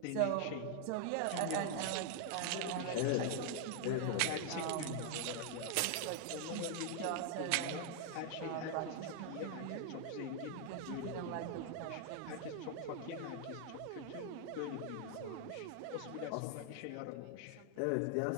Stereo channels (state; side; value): different; both; correlation 0.00